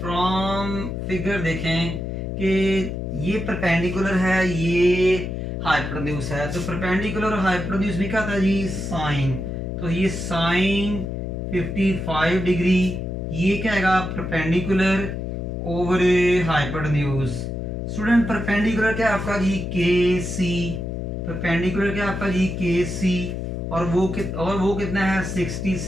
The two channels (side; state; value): left; noise; hum, 4 dB below the sound